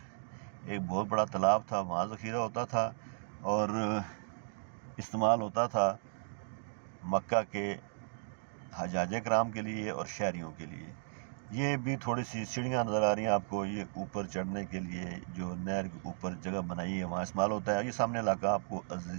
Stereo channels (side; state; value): left; silent; digital silence